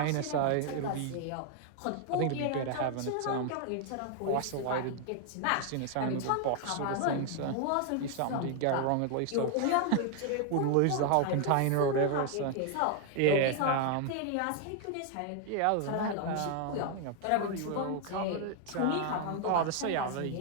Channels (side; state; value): both; different; correlation 0.00